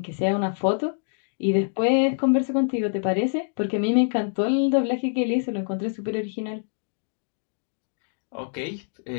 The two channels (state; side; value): silent; right; digital silence